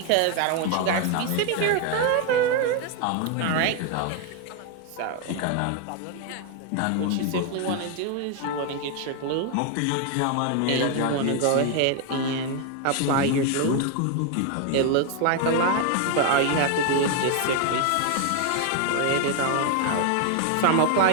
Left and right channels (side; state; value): both; different; correlation 0.01